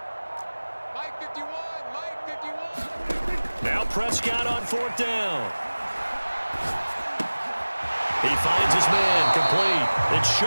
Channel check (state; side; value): inverted; both; correlation -1.00